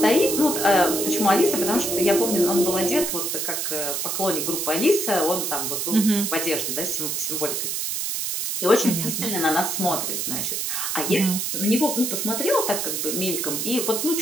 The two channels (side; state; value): right; noise; hiss, 1 dB below the sound